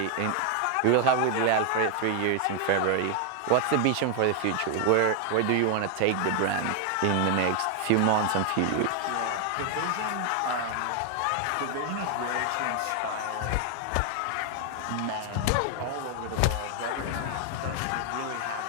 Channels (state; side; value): different; both; correlation 0.00